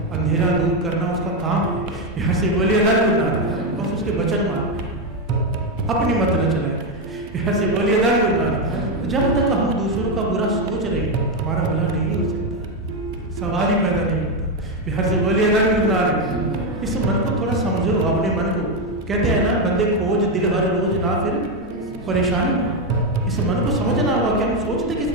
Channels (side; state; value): both; normal; correlation 0.07